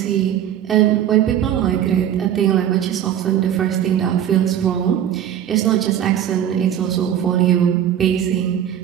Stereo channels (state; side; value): quieter; left; 10.3 dB